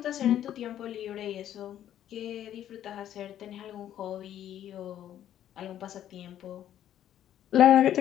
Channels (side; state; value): right; quieter; 11.2 dB